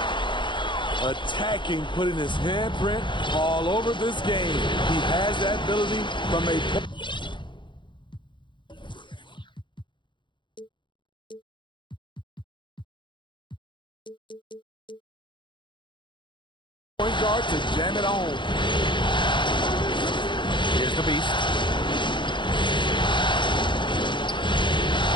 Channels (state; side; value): late; right; 0.23 ms